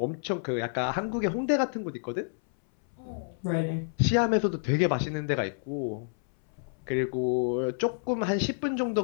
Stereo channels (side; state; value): right; silent; 59 dB below the other